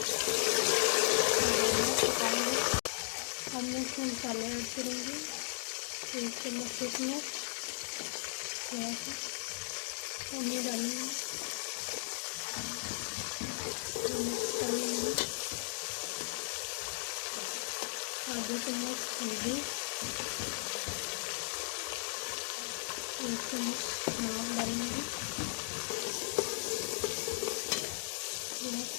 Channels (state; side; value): silent; right; digital silence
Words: अब मैं इसमें मसाले ऐड करूँगी। 1 चम्मच किशमिश, थोड़ा सा पानी डालूँगी, मिक्स कर लूँगी। आधे चम्मच हल्दी, 1 चम्मच नमक डालूँगी। थोड़ा